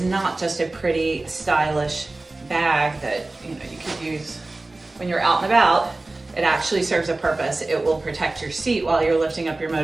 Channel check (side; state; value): left; quieter; 3.1 dB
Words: not just a pretty stylish bag that you could use when you're out and about. It actually serves a purpose. It will protect your seat while you're lifting up your